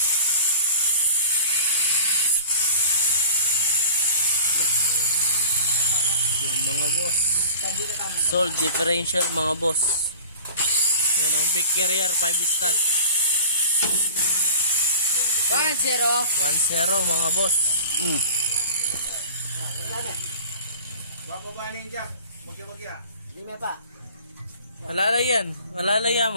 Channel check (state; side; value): inverted; both; correlation -0.41